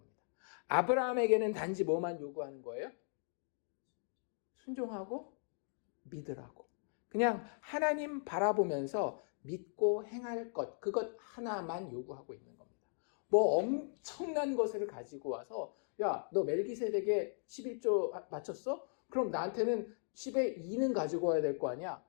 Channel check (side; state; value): right; silent; digital silence